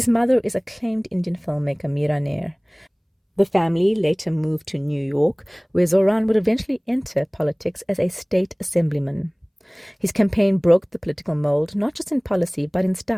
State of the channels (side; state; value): both; identical; correlation 1.00